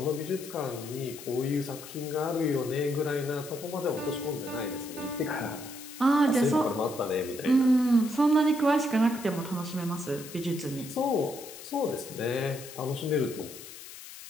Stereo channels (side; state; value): left; noise; hiss, 14 dB below the sound